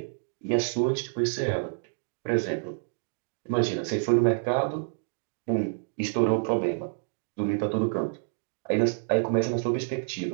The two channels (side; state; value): left; silent; digital silence